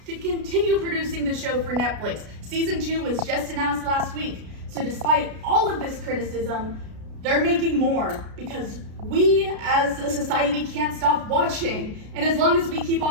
continue producing the show for Netflix. Season 2 was just announced last week. So despite all of this criticism, they're making more because we as a society can't stop watching. And as long as we keep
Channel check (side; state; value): left; late; 33 ms